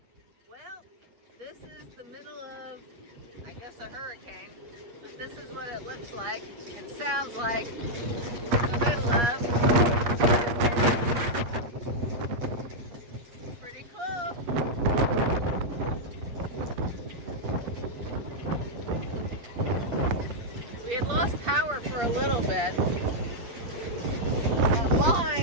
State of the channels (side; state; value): left; late; 8.4 ms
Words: Well, this is the middle of, I guess, a hurricane, but this is what it looks like and sounds like in the middle of. Pretty cool. We had lost power for a little bit.